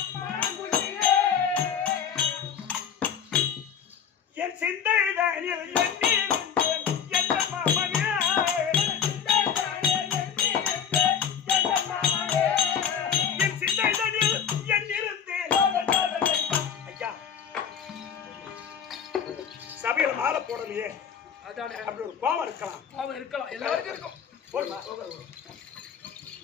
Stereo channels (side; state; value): right; quieter; 7.7 dB